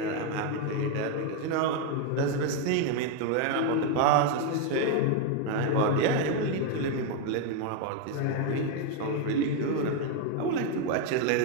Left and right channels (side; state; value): both; different; correlation 0.01